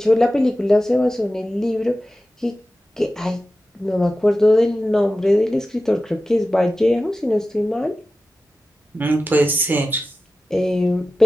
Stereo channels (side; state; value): both; normal; correlation 0.94